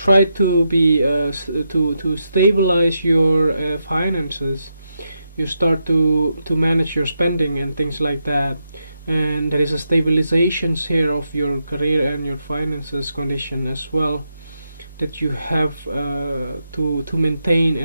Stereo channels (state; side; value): inverted; both; correlation -0.84